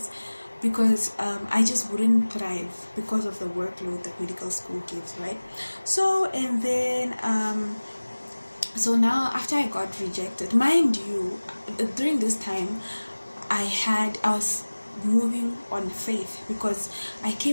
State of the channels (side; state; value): both; inverted; correlation -1.00